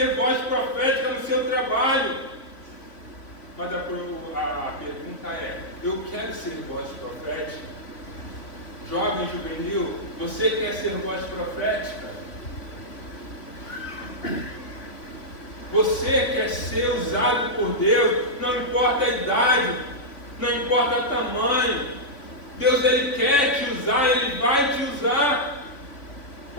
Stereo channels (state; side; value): late; right; 3.5 ms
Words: voz profética no seu trabalho. Mas a pergunta é: eu quero ser voz profética? Jovem juvenil, você quer ser voz profética? Você quer ser usado por Deus? Não importa a idade, não importa o tamanho. Deus ele quer te usar, ele vai te usar.